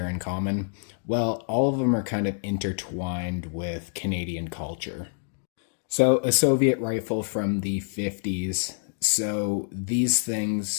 in common? Well, all of them are kind of intertwined with Canadian culture. So, a Soviet rifle from the 50s. So, these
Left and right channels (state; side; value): silent; right; digital silence